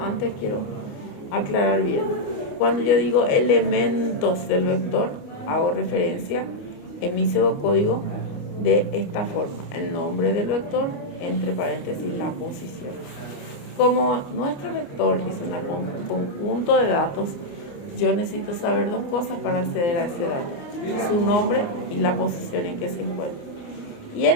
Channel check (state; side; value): late; right; 29 ms